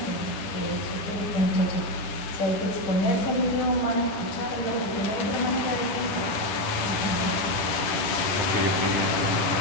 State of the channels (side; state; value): right; late; 10 ms